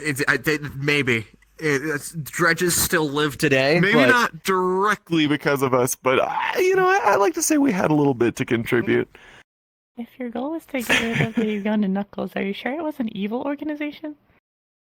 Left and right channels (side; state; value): both; identical; correlation 1.00